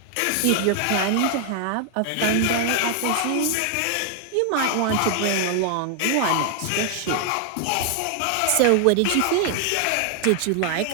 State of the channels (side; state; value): both; different; correlation 0.00